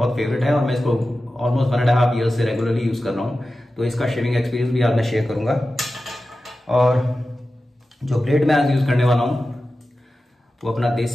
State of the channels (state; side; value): normal; both; correlation 0.94